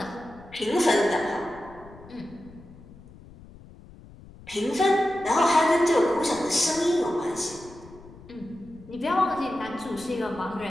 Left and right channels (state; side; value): noise; left; rumble, 20 dB below the sound